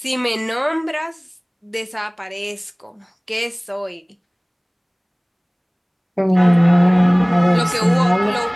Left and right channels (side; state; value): both; identical; correlation 1.00